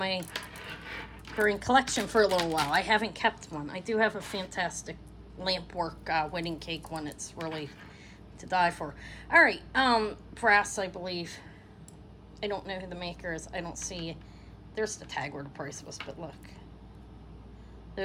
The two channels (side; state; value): both; identical; correlation 1.00